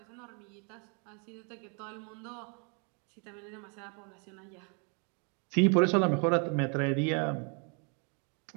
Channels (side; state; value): left; quieter; 36.7 dB